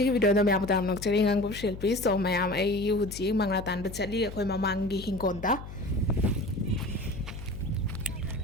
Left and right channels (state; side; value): noise; left; hum, 12 dB below the sound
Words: ꯚꯤꯗꯤꯑꯣꯗ ꯃꯌꯥꯝ ꯇꯥꯝ ꯅꯣꯛꯆꯔꯤ ꯉꯥꯡꯕ ꯁꯤꯜꯄꯤ ꯁꯣ ꯃꯌꯥꯝ ꯑꯩ ꯍꯧꯖꯤꯛ ꯃꯪꯒ꯭ꯔꯥ ꯇꯥꯟꯕ ꯆꯠꯂꯤ ꯑꯩꯈꯣꯏ ꯃꯃꯥꯡꯒꯤ ꯍꯤꯡꯒꯣꯜꯗ